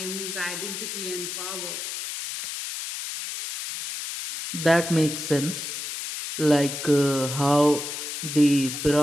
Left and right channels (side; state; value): left; noise; hiss, 6 dB below the sound